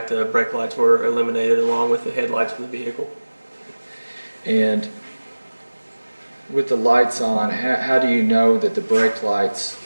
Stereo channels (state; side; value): inverted; both; correlation -1.00